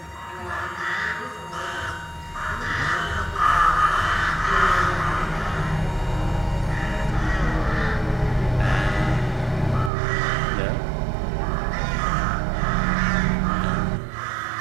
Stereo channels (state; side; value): drops out; left; at 9.9 s